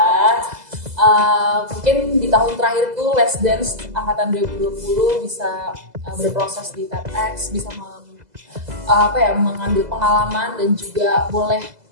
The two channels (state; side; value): late; left; 2.0 ms